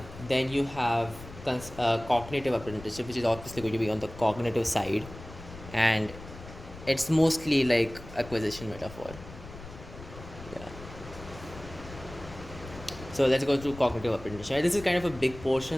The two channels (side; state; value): left; noise; rumble, 15 dB below the sound